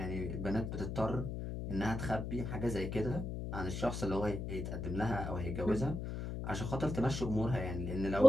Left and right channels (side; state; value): left; noise; hum, 3 dB below the sound